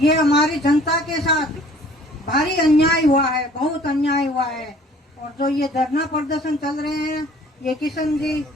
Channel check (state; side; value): normal; both; correlation 0.53